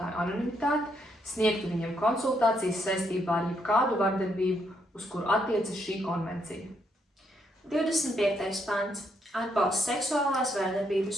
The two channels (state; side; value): normal; both; correlation 0.75